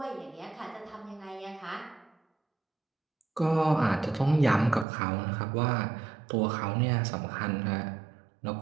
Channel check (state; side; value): drops out; left; at 4.9 s